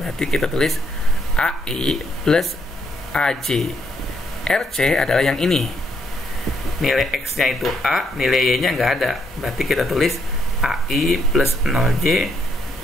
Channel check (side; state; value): both; normal; correlation 0.74